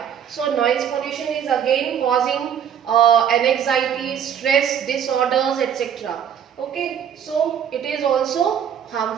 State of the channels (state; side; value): quieter; left; 8.7 dB